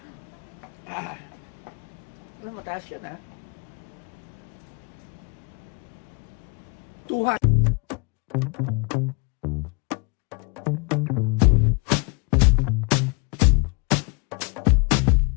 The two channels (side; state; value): right; quieter; 31.7 dB